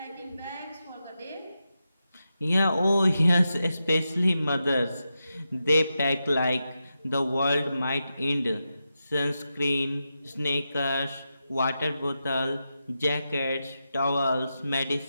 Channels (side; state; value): both; inverted; correlation -0.89